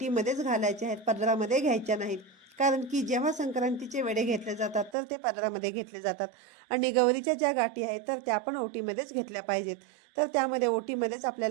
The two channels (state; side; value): drops out; left; at 5.0 s